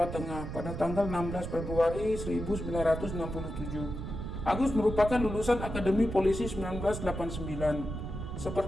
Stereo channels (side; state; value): right; noise; rumble, 6 dB below the sound